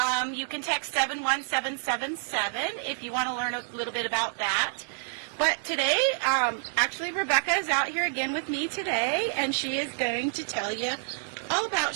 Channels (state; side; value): silent; left; digital silence